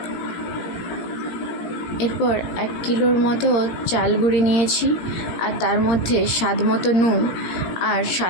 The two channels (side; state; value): right; late; 17 ms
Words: এরপর 1 কিলোর মতো চাল গুঁড়ি নিয়েছি, আর তার মধ্যে স্বাদ মতো নুন আর